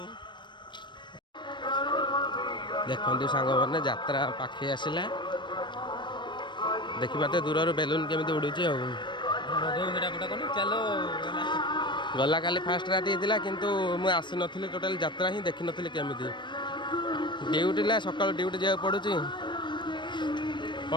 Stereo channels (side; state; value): right; late; 0.22 ms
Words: देखु सांग मैंने यात्रा पाखे आसला देखिए दूर बेलून केमी उड़ू गला काली फास्ट राति होता किंतु मुझे आसी नी टोटाल यात्रा ही देखी नी केमी ड्यूटी ला सकाल ड्यूटी जाए पड़ू